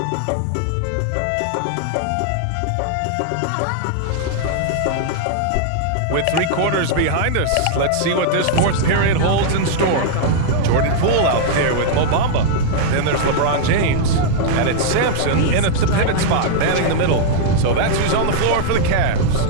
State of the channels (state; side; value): different; both; correlation -0.01